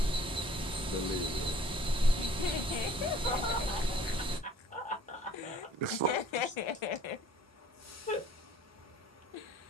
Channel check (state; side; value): normal; both; correlation 0.54